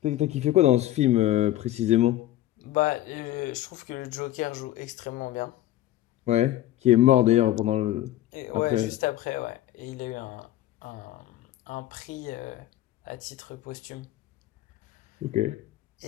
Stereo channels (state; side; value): quieter; right; 14.1 dB